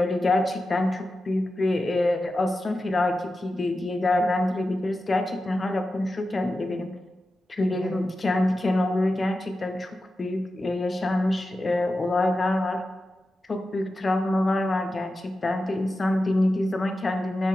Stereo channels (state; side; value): normal; both; correlation 0.92